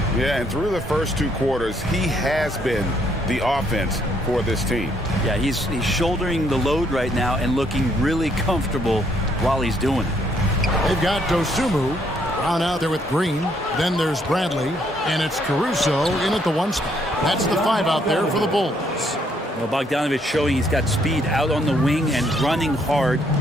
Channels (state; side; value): normal; both; correlation 0.70